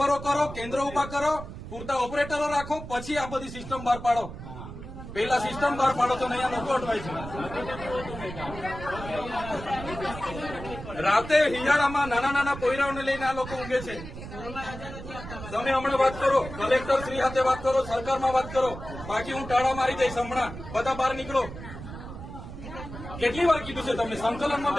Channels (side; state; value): right; noise; rumble, 11 dB below the sound